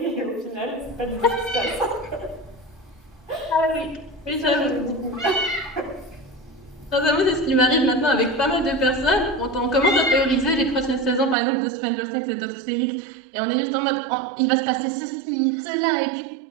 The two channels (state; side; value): drops out; left; at 11.4 s